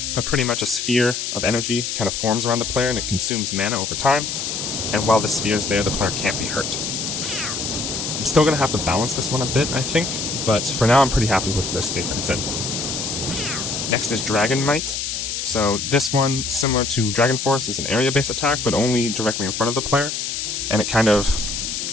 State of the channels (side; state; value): left; noise; hiss, 3 dB below the sound